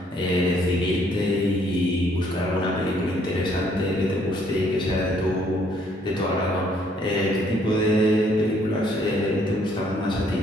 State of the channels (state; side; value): normal; both; correlation 0.65